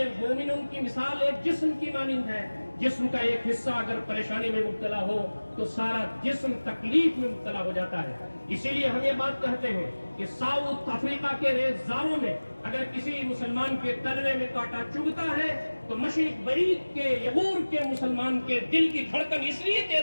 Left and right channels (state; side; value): inverted; both; correlation -1.00